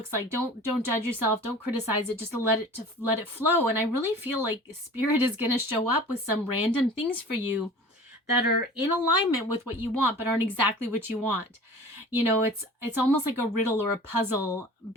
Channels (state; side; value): normal; both; correlation 0.42